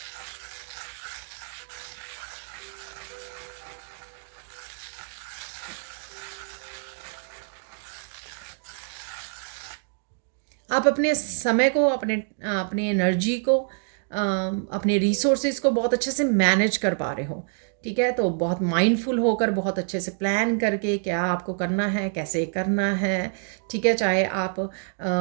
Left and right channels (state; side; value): silent; left; 61 dB below the other